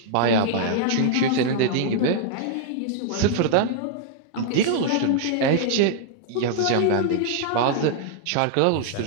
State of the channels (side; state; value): both; different; correlation -0.01